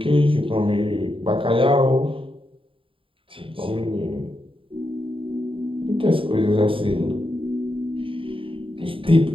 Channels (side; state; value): left; late; 0.25 ms